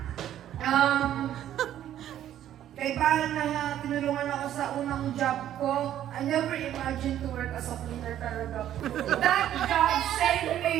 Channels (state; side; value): quieter; left; 11.5 dB